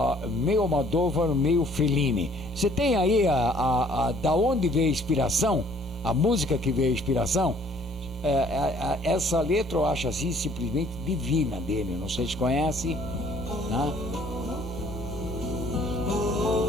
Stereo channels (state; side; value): normal; both; correlation 0.59